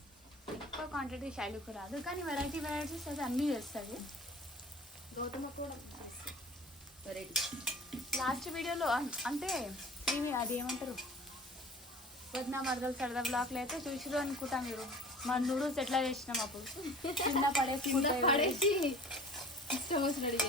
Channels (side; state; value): both; normal; correlation 0.44